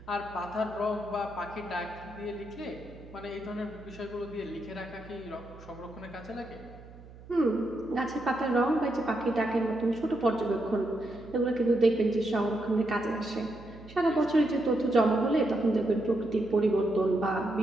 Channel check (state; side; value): noise; right; hum, 19 dB below the sound